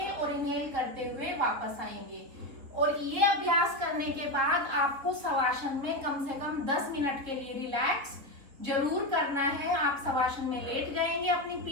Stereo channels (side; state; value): left; late; 4.0 ms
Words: और इनहेल करते हुए वापस आएंगे। और ये अभ्यास करने के बाद आपको शवासन में कम से कम 10 मिनट के लिए रिलैक्स जरूर करना है। आप शवासन में लेट जाएंगे अपनी